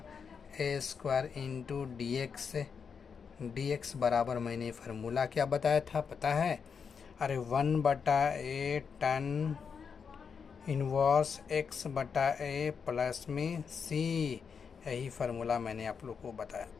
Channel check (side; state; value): right; quieter; 6.2 dB